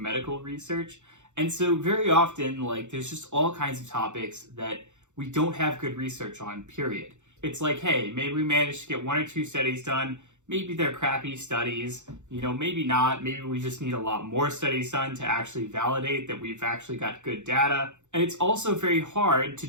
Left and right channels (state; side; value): late; left; 0.84 ms